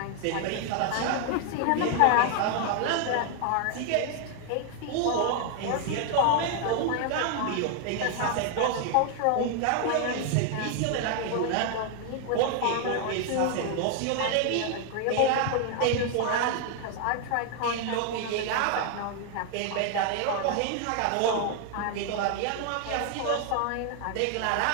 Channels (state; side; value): different; both; correlation 0.00